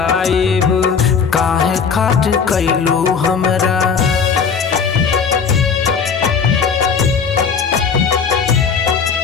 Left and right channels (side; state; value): right; quieter; 6.1 dB